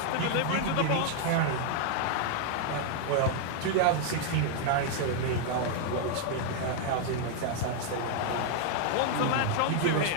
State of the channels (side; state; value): both; different; correlation 0.00